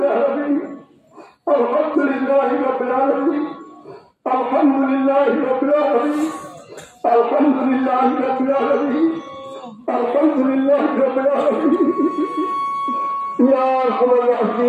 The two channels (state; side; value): identical; both; correlation 1.00